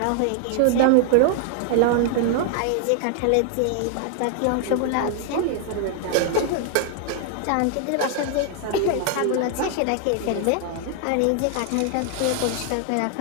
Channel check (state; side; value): different; both; correlation 0.00